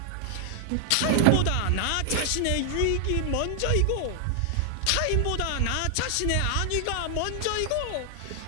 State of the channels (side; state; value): both; different; correlation 0.00